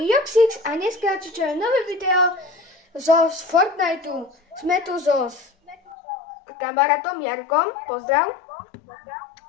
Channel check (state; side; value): drops out; right; at 6.0 s